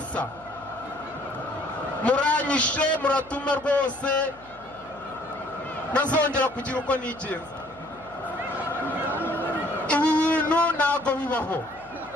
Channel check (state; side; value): noise; left; hum, 25 dB below the sound